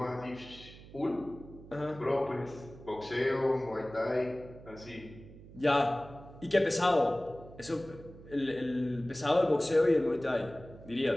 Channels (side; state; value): right; noise; hum, 18 dB below the sound